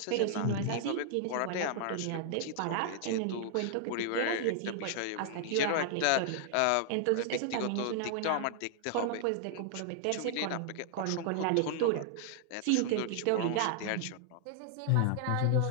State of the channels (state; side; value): different; both; correlation -0.01